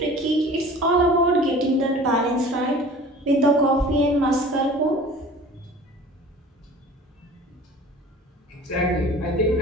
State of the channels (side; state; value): both; normal; correlation 0.43